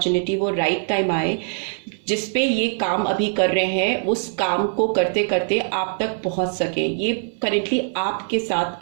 वो राइट टाइम आए जिस पे ये काम अभी कर रहे हैं, उस काम को करते करते आप तक पहुंच सकें। ये करेंटली आपके साथ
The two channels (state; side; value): silent; left; 59 dB below the other